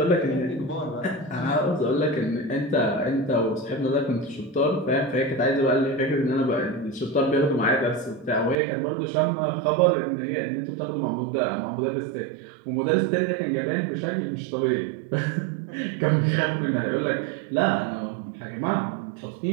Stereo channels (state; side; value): drops out; left; at 8.6 s